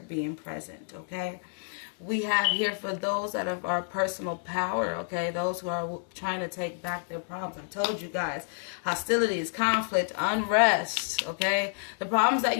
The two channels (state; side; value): silent; right; digital silence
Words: being present, okay? We have here for those that have our personal power, okay, those who are trying to take back their problems. I told you guys, hostilities, conflict, unrest, okay? The problems that